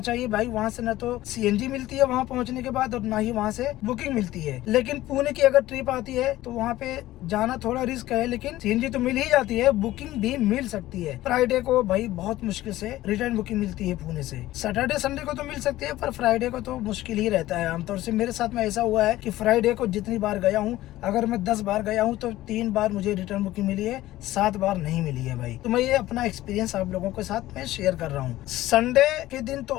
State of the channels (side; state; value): right; quieter; 15.8 dB